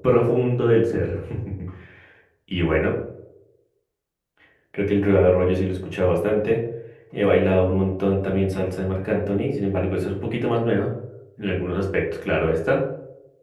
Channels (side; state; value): both; identical; correlation 1.00